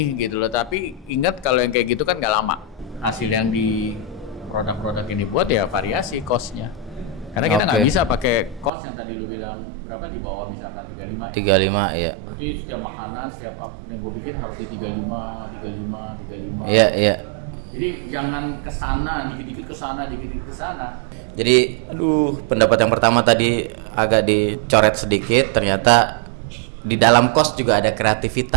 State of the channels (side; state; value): left; drops out; at 8.7 s